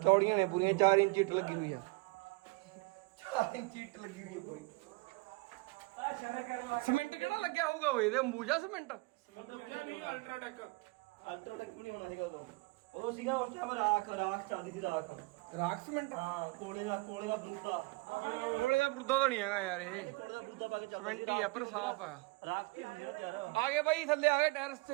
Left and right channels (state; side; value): quieter; left; 26.1 dB